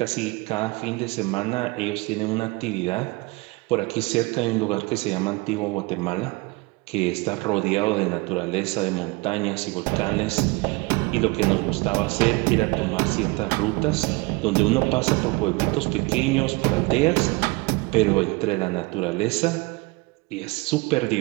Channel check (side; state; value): left; quieter; 25.1 dB